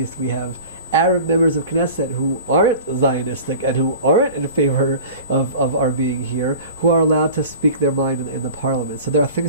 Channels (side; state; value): both; inverted; correlation -0.39